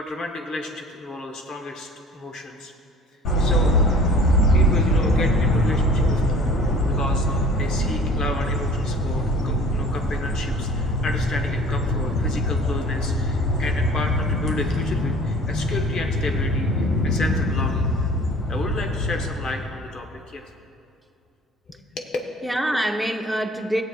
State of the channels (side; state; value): both; normal; correlation 0.47